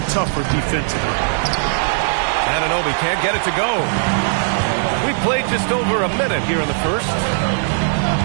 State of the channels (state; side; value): silent; left; 67 dB below the other